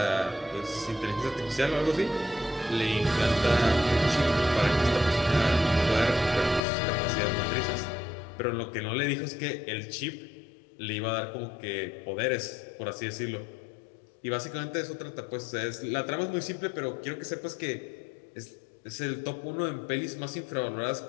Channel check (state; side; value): drops out; right; at 6.6 s